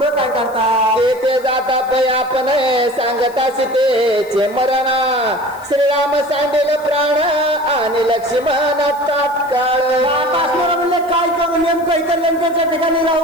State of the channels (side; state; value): left; noise; hiss, 24 dB below the sound